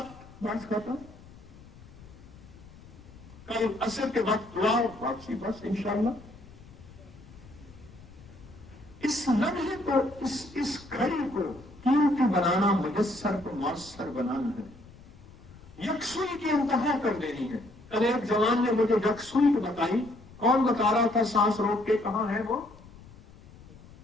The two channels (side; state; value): left; noise; rumble, 21 dB below the sound